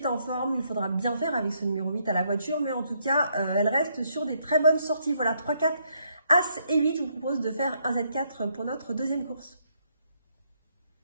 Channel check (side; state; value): both; inverted; correlation -0.73